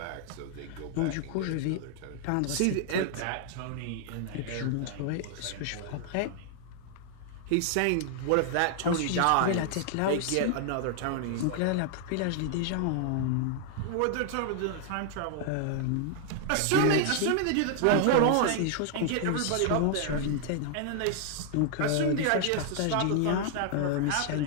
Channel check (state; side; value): different; both; correlation 0.00